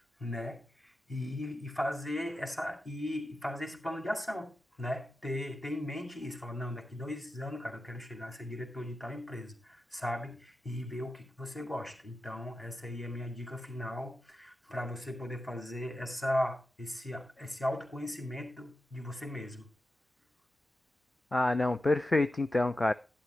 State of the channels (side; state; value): both; normal; correlation 0.91